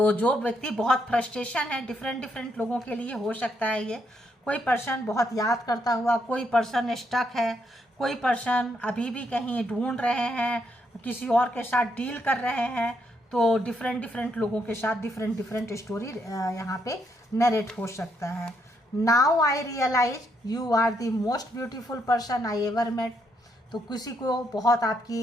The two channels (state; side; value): normal; both; correlation 0.76